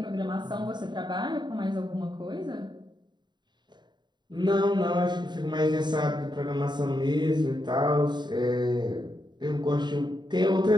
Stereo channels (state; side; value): late; left; 0.21 ms